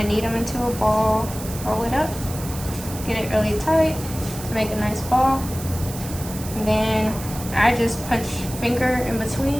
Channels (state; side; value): noise; right; hiss, 12 dB below the sound